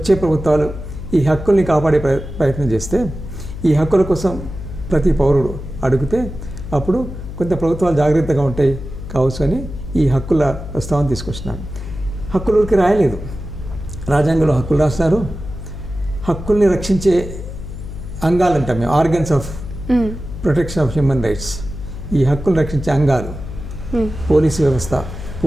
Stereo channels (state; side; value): noise; left; hum, 9 dB below the sound